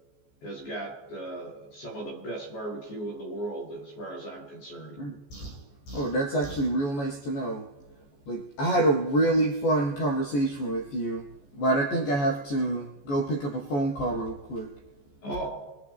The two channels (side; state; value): right; late; 14 ms